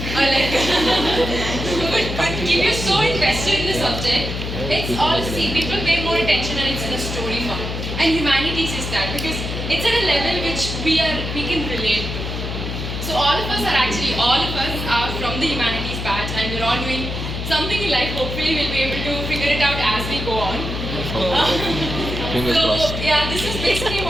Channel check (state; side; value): noise; left; hum, 5 dB below the sound